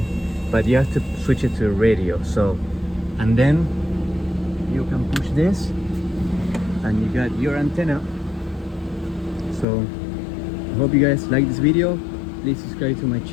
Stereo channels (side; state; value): right; drops out; at 9.7 s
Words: but you have to switch it to radio. So, and then you can push this and you got your antenna. So I hope you guys like this video. Please subscribe to my